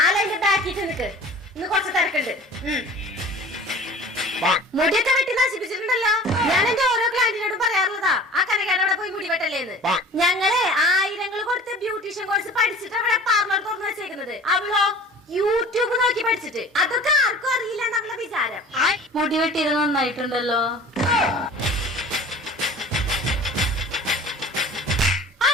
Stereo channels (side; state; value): both; normal; correlation 0.43